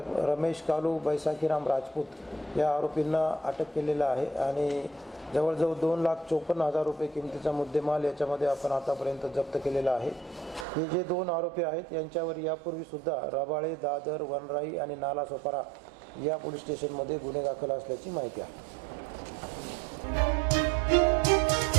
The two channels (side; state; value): left; drops out; at 10.7 s